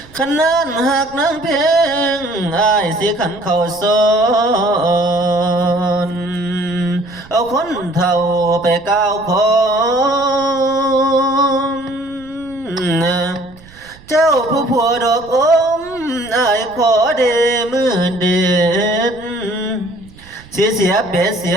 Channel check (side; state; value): right; noise; rumble, 23 dB below the sound